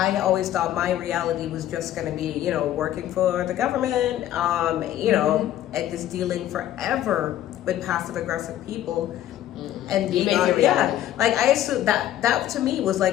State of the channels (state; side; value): quieter; right; 12.5 dB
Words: always thought my reality was just going to be, you know, working for the government, you know, and just dealing forever with passive aggressive people. And You being make it yeah, reality. like I assumed that to me was